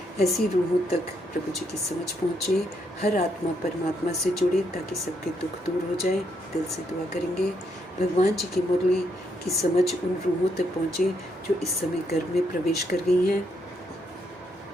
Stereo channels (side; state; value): both; normal; correlation 0.76